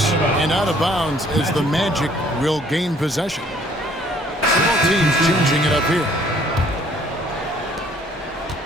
and out of bounds as the Magic will gain possession. Both teams changing it up here.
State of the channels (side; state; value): both; normal; correlation 0.59